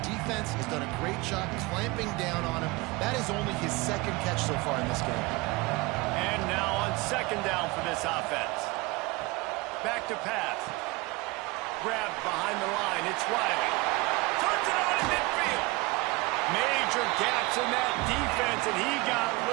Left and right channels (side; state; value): left; quieter; 23.6 dB